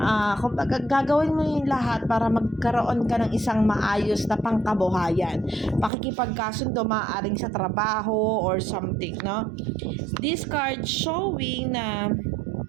kumbaga gagawin mo yung lahat para magkaroon ka ng isang maayos na pangkabuhayan. Pakikipagkasundo maaaring sa trabaho or something, no? This card showing na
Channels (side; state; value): left; drops out; at 5.9 s